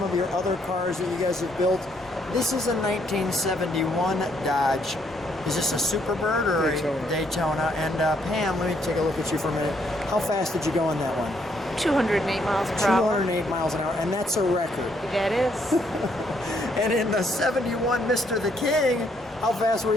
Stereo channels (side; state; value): both; normal; correlation 0.71